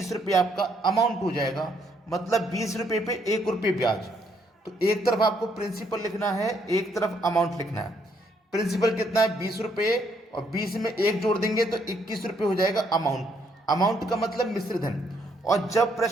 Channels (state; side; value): normal; both; correlation 0.71